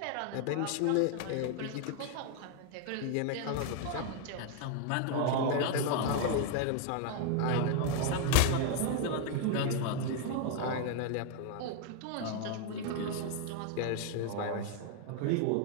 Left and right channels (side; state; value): both; different; correlation 0.00